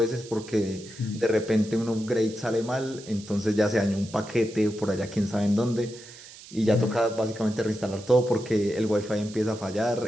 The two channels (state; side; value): noise; right; hiss, 18 dB below the sound